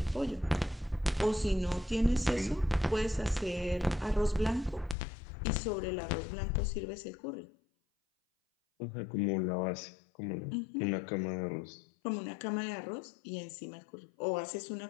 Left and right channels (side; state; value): right; drops out; at 5.0 s